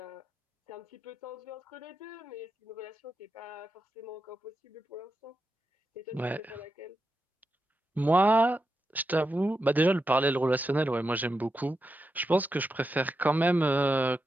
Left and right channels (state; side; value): normal; both; correlation 0.87